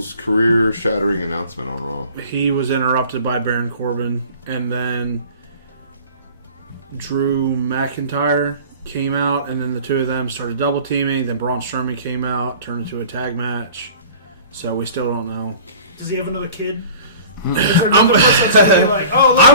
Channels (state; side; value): inverted; both; correlation -0.44